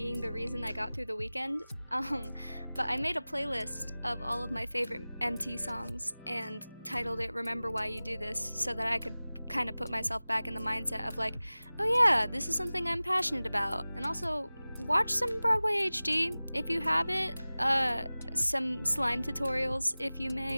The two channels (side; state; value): both; inverted; correlation -0.98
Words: the reason I got through the weekend. But I made a playlist of all of my favorite MT songs and titled it Remember Why You Do This so that I could kind of put myself back in the mindset of like, oh yeah, this is something I'm passionate about. And also, watch some Broadway HD if you have it. Some slime tutorials if you